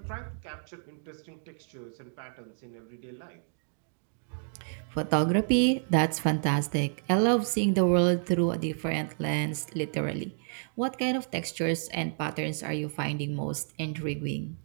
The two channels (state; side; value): silent; left; digital silence